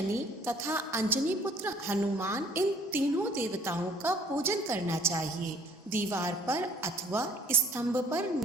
तथा अंजनी पुत्र हनुमान, इन तीनों देवताओं का पूजन करना चाहिए। दीवार पर अथवा स्तंभ पर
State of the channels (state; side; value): normal; both; correlation 0.59